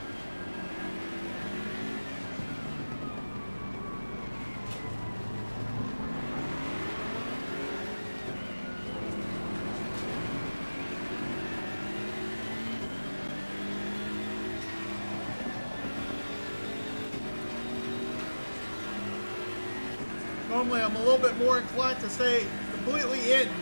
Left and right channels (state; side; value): inverted; both; correlation -1.00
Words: Normally I'm a little bit more inclined to stay completely in